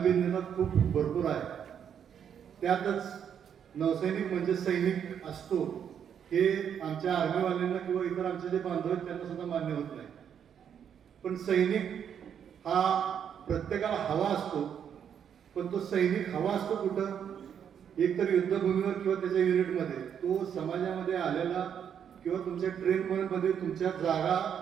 खूप भरपूर आहे. त्यातच नौसैनिक म्हणजे सैनिक असतो हे आमच्या आर्मीवाल्यांना किंवा इतर आमचे जे बांधव आहेत त्यांना सुद्धा मान्य होत नाही. पण सैनिक हा प्रत्येकाला हवा असतो. पण तो सैनिक हवा असतो कुठं? एकतर युद्धभूमीवर किंवा त्याच्या युनिटमध्ये. तो समाजामध्ये आलेला किंवा तुमच्या ट्रेनमध्ये तुमच्या जागा,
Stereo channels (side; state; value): left; quieter; 8.3 dB